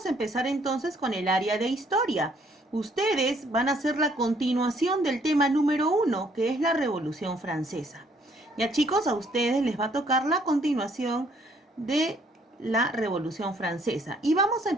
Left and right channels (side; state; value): both; normal; correlation 0.65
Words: a empezar entonces con el área de historia. Ustedes van a hacer la continuación del tema número 1, que es la Revolución Francesa. Ya chicos, a ustedes les va a tocar la continuación de la Revolución Francesa. Y vamos a